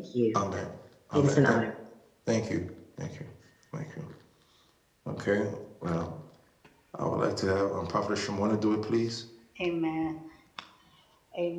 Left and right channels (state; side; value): identical; both; correlation 1.00